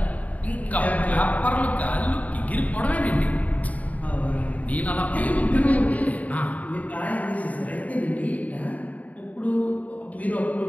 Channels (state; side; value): late; right; 0.071 ms